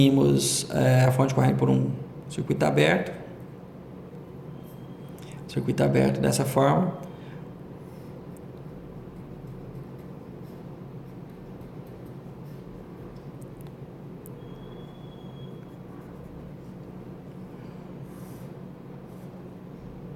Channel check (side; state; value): both; identical; correlation 1.00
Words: a fonte de corrente por um circuito aberto. Circuito aberto dessa forma.